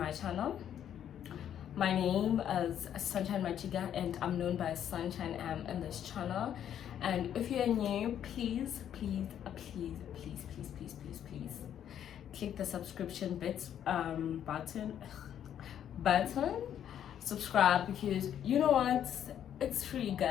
channel. My name is Sunshine Machiga and I'm known by Sunshine M in this channel. And if you're new, please click the subscription button, subscribe, because you know what, it's free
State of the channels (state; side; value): quieter; right; 9.9 dB